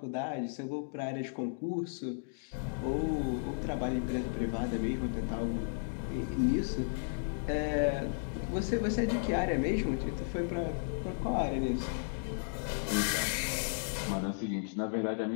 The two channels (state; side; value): silent; right; digital silence